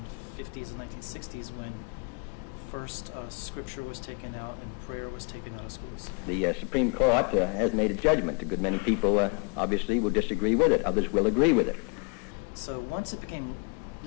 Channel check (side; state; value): right; quieter; 36.4 dB